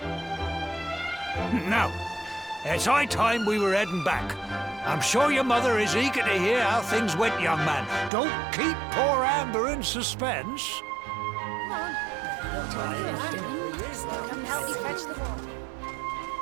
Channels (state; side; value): drops out; left; at 8.1 s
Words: Now, it's high time we were heading back. I'm sure your mother is eager to hear how things went, young man. Don't keep poor Amber in suspense.